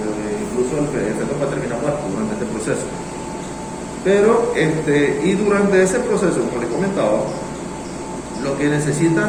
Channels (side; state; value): both; identical; correlation 1.00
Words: incluso el feto va a terminar muerto durante este proceso. Pero, y durante ese proceso, como les comentaba, lo que